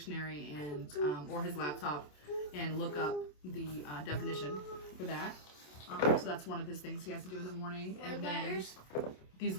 and or his laptop and look up the definition for that. So that's one of his things he has to do in the morning. And then these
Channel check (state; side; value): late; right; 27 ms